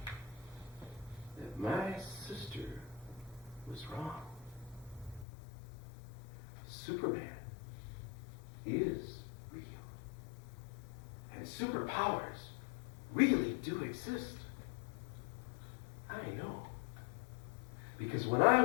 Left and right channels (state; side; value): drops out; right; at 5.2 s